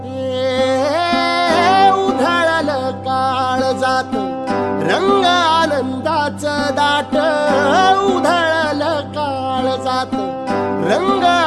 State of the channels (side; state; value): both; identical; correlation 1.00